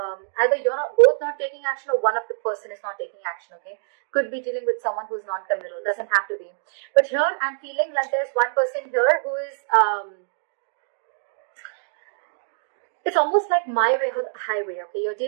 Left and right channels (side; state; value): left; silent; digital silence